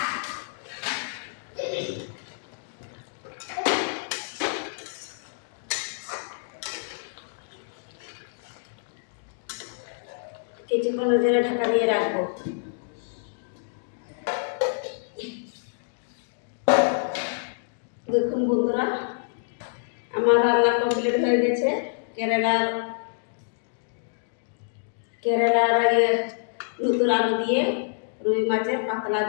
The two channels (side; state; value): right; silent; digital silence